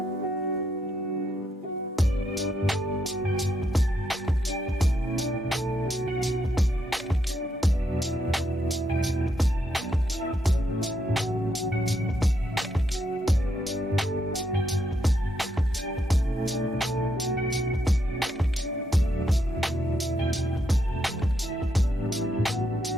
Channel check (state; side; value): normal; both; correlation 0.78